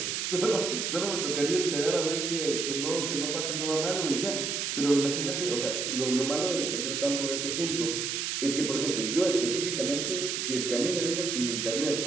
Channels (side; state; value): right; noise; hiss, 1 dB below the sound